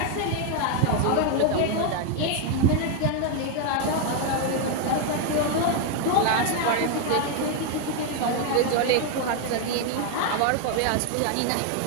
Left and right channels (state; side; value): different; both; correlation 0.01